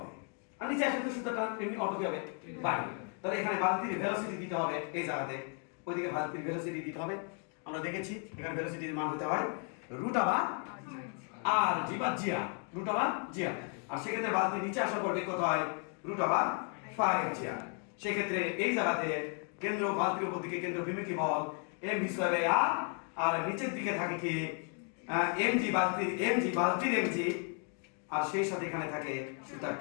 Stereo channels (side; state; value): right; quieter; 40.0 dB